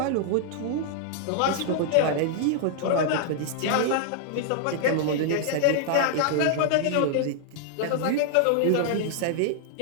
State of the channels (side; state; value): both; different; correlation -0.01